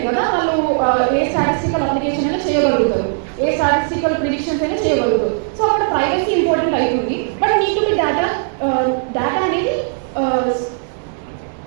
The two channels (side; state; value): left; silent; 63 dB below the other